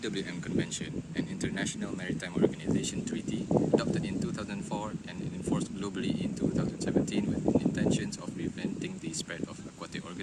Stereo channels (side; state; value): both; identical; correlation 1.00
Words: Convention, an international maritime organization treaty, adopted in 2004 and enforced globally in 2017 with intentions of preventing the spread of aquatic